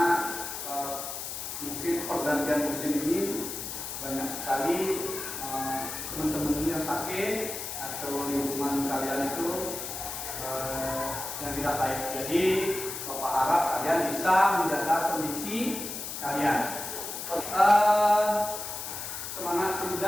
mungkin pergantian musim ini banyak sekali teman-teman yang sakit atau lingkungan kalian itu yang tidak baik. Jadi Bapak harap kalian bisa menjaga kondisi kalian. Semangat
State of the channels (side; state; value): left; noise; hiss, 6 dB below the sound